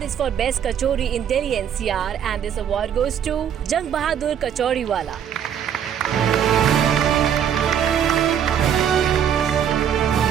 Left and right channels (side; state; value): left; quieter; 8.9 dB